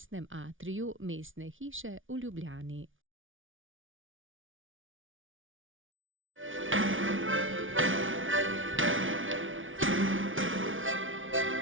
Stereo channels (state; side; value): late; left; 0.57 ms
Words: atriju Mestne hiše v Ljubljani.